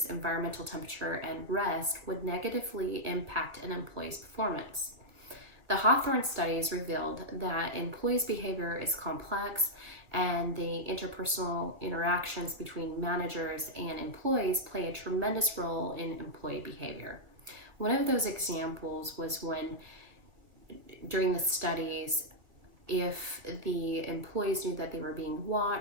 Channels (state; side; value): late; left; 1.7 ms